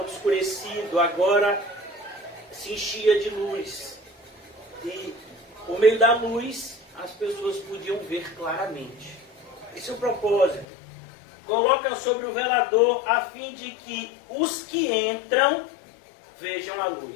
obscurecido, agora se enchia de luz. E por meio da luz, as pessoas podiam ver claramente. Esse é o propósito. Coloca sobre o velador a fim de que os que entram vejam a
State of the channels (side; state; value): right; drops out; at 10.7 s